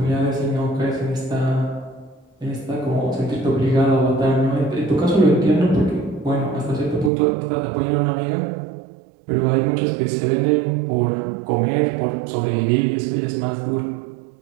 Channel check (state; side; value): drops out; left; at 7.1 s